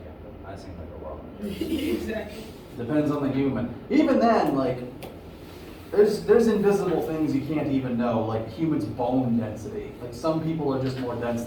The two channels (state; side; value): identical; both; correlation 1.00